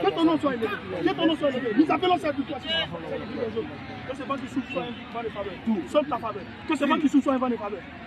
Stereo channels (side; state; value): both; identical; correlation 1.00